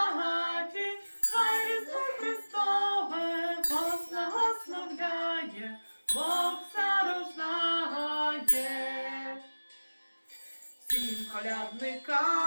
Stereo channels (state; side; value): inverted; both; correlation -1.00